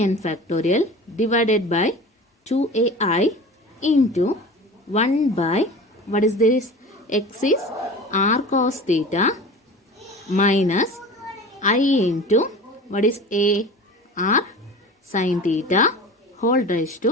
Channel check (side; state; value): both; normal; correlation 0.36